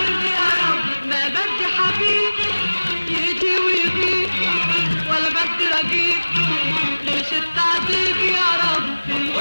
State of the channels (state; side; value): inverted; both; correlation -1.00